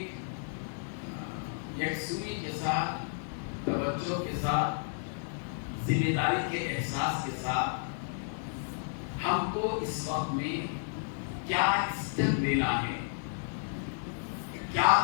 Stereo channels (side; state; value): right; silent; digital silence